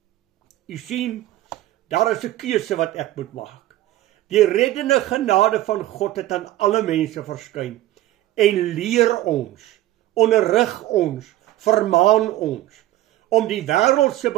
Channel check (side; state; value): left; quieter; 14.8 dB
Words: U sien, daar is 'n keuse wat ek moet maak. Die reddende genade van God het aan alle mense verskyn en leer ons, onderrig ons, vermaan ons om die wêreldse